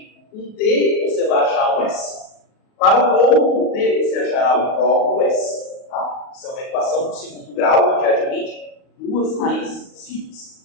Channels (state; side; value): late; right; 38 ms